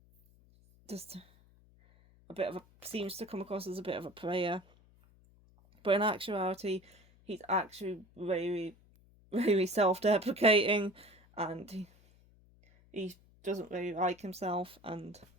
just seems to come across as a bit of a player. But in actuality, he's actually very, very self-deprecating, and he doesn't really like himself, and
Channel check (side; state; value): left; noise; hum, 28 dB below the sound